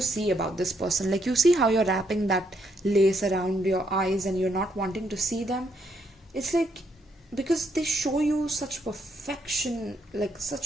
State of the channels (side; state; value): both; normal; correlation 0.75